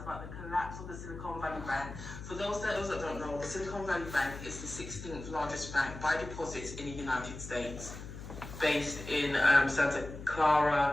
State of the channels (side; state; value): left; noise; hum, 11 dB below the sound